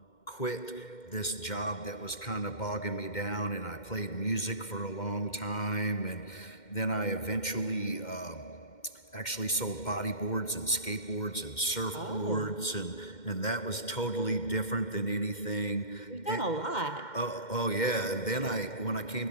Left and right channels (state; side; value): late; right; 2.1 ms